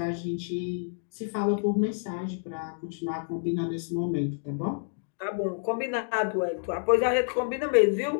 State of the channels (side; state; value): right; silent; digital silence